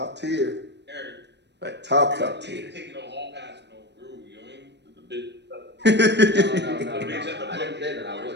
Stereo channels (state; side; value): late; left; 0.50 ms